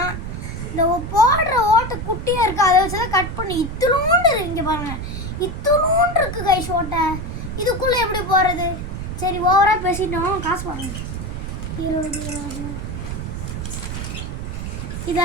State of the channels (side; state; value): right; noise; rumble, 6 dB below the sound